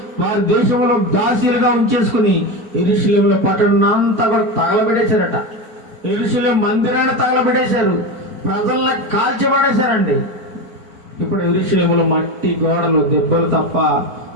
వారి దేశంలో దాసీలుగా ఉంచేసుకుని యెరూషలేములో పట్టణం అంతా కూడా తగలబెట్టేశారట. యెరూషలేము మందిరాన్ని తగలబెట్టేశారు, ప్రజల్ని కాల్చిపడేశారండి. ఇప్పుడు యెరూషలేములో మట్టి గోడలు దెబ్బలు తప్ప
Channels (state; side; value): late; left; 4.5 ms